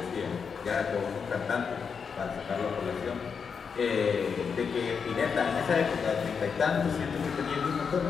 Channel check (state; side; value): quieter; right; 6.1 dB